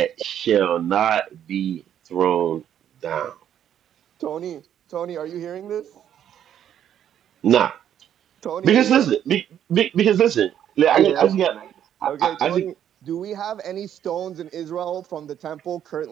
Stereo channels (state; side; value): quieter; left; 10.0 dB